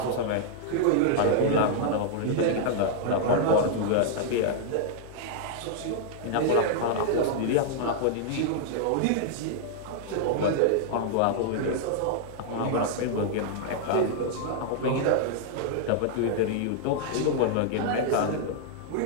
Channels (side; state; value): both; different; correlation -0.01